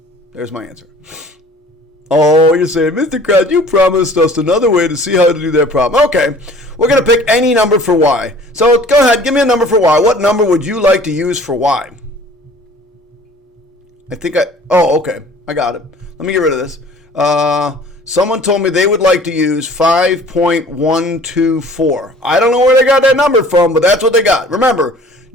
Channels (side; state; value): both; normal; correlation 0.49